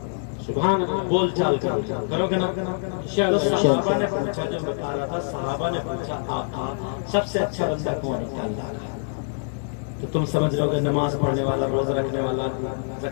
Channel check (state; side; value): silent; right; digital silence